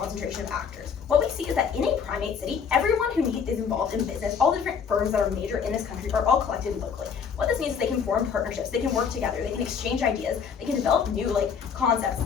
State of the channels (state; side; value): quieter; right; 6.6 dB